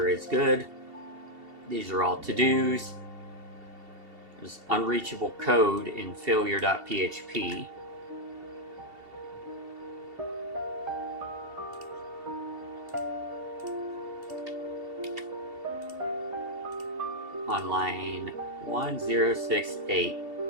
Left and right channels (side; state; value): left; late; 2.7 ms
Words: is good. These are all to-dos. There's unreachable code in failure.php. On line 1068.